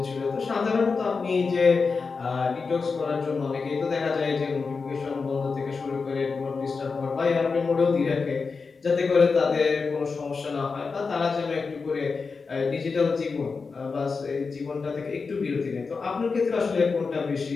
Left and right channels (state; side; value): quieter; right; 4.7 dB